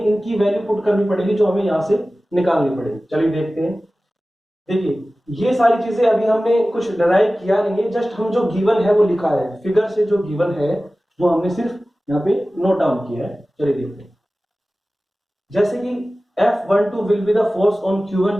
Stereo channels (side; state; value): both; normal; correlation 0.96